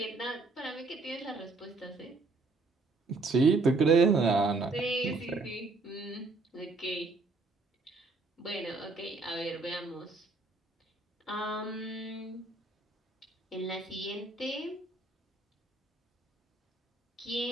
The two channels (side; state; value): left; quieter; 3.5 dB